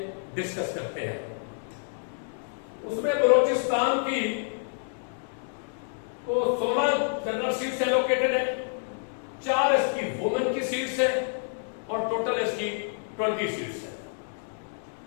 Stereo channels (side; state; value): right; silent; digital silence